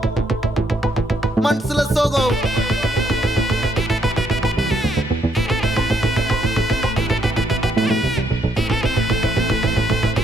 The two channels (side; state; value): both; normal; correlation 0.73